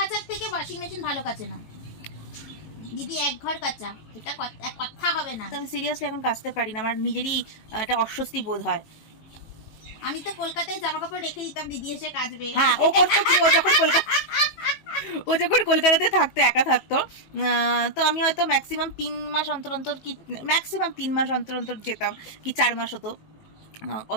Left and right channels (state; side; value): late; right; 19 ms